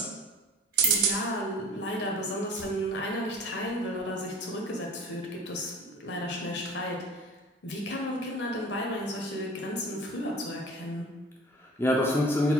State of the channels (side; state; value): both; normal; correlation 0.41